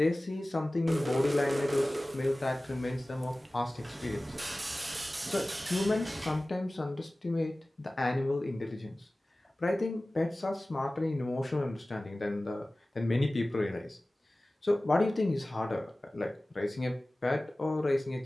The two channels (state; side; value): normal; both; correlation 0.97